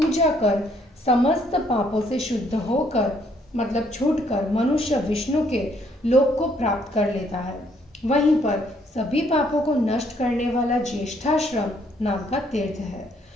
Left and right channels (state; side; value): normal; both; correlation 0.67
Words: कर समस्त पापों से शुद्ध होकर मतलब छूटकर मनुष्य विष्णु के लोक को प्राप्त कर लेता है। वहीं पर सभी पापों को नष्ट करने वाला ज्येष्ठाश्रम नाम का तीर्थ है।